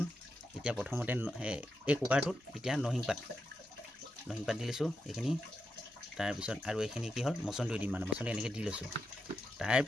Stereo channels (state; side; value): normal; both; correlation 0.86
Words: এতিয়া প্ৰথমতে এই কুকাৰটোত এতিয়া নৰসিংহ পাত দি লৈছোঁ এইখিনি তাৰপিছত আৰু এইখিনি কি হ'ল মচন্দৰী দিম মানে মচন্দৰী এনেকৈ দি লৈছোঁ